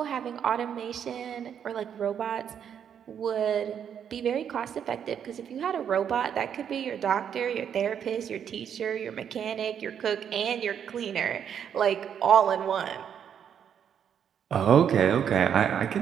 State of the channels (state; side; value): quieter; left; 8.4 dB